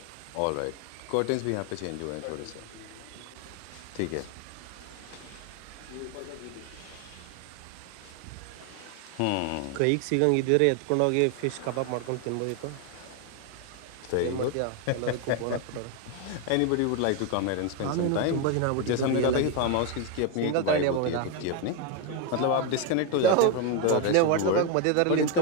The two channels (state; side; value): different; both; correlation 0.01